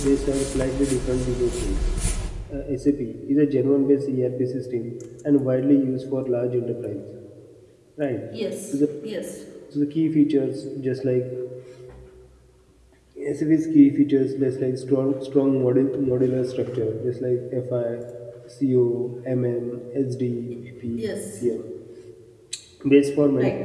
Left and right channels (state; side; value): identical; both; correlation 1.00